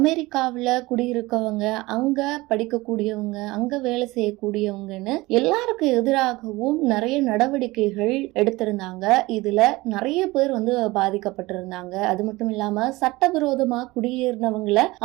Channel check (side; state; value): left; quieter; 20.9 dB